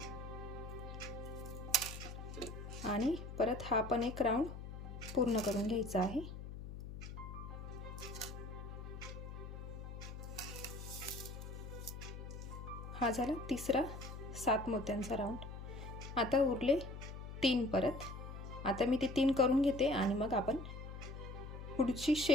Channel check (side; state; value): left; noise; hum, 9 dB below the sound